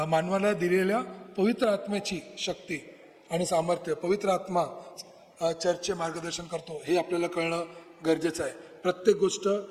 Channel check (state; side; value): identical; both; correlation 1.00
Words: मानवाला दिलेल्या पवित्र आत्म्याची शक्ती आणि सामर्थ्य, पवित्र आत्मा चर्चचे मार्गदर्शन करतो हे आपल्याला कळणं गरजेचं आहे. प्रत्येक गोष्ट